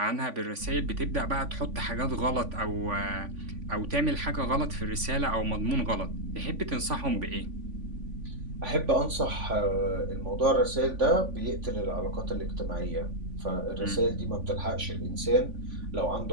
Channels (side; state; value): left; late; 3.5 ms